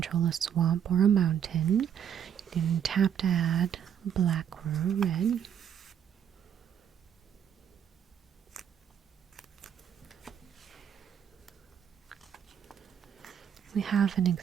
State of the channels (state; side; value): quieter; left; 8.8 dB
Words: a swamp or a mountain. You can tap to add a black or a red. We have an